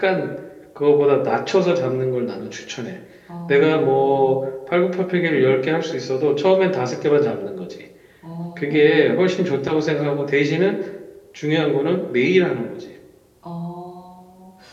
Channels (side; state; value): both; identical; correlation 1.00